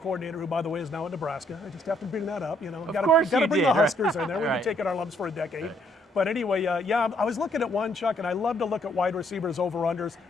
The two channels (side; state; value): both; normal; correlation 0.69